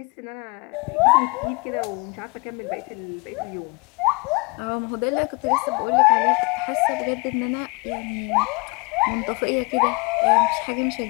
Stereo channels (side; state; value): right; quieter; 29.3 dB